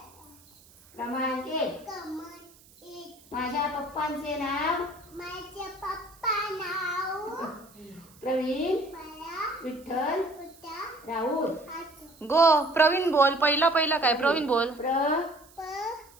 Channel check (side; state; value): right; noise; hiss, 26 dB below the sound